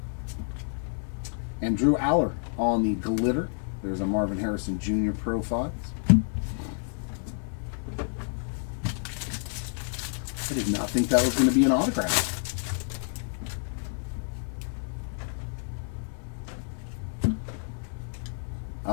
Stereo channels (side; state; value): right; silent; digital silence